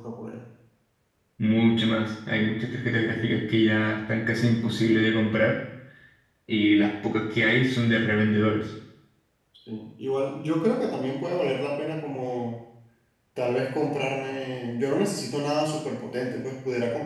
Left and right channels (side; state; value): both; identical; correlation 1.00